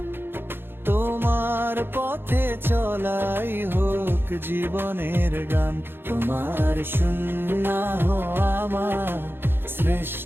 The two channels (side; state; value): left; late; 0.10 ms